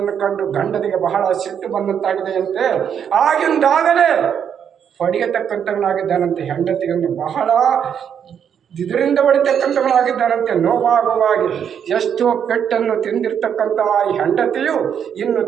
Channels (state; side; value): quieter; left; 8.2 dB